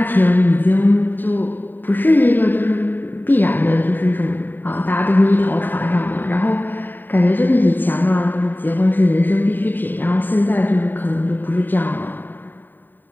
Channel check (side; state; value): right; late; 0.091 ms